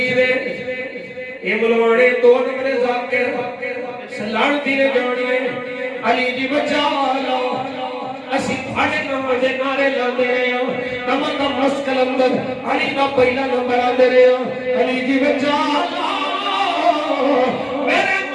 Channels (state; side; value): identical; both; correlation 1.00